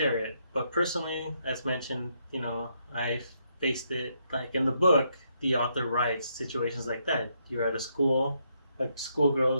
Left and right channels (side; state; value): both; inverted; correlation -0.76